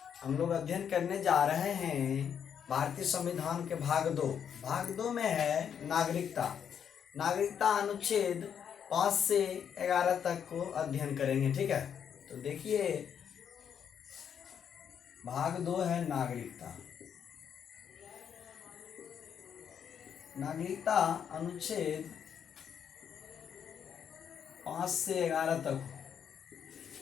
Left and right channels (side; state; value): right; quieter; 8.1 dB